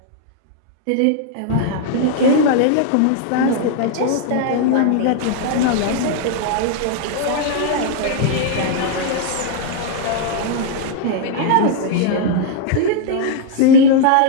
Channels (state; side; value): different; both; correlation -0.01